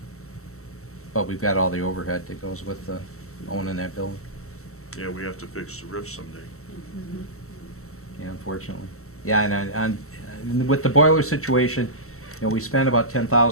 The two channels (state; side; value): late; right; 0.64 ms